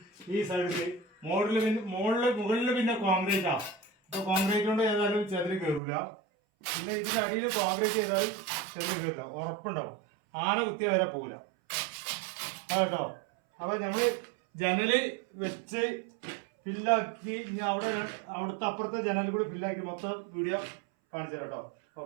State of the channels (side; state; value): left; drops out; at 5.8 s